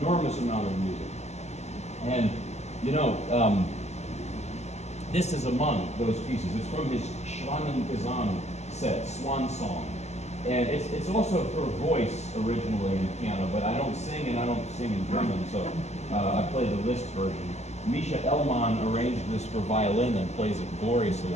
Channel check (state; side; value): late; right; 0.32 ms